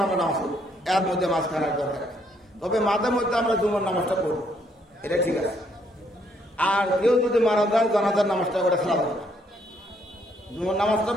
আমরা নামাজ পড়ব, এর মধ্যে মাঝখানের দরকার। তবে মাঝে মধ্যে আমরা জুমার নামাজটা পড়বো, এটা ঠিক আছে। আর কেউ যদি মারা যায় জানাজার নামাজটা করে ছাড়া যাবে না, জুমার নামাজটা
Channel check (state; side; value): normal; both; correlation 0.70